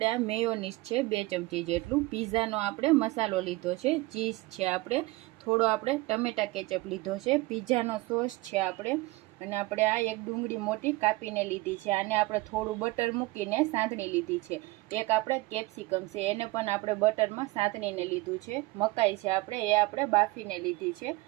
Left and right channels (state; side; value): quieter; left; 21.4 dB